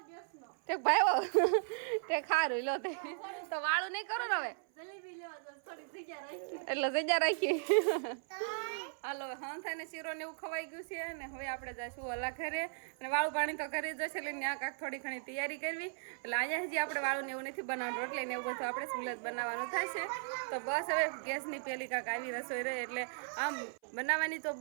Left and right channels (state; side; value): silent; left; 53 dB below the other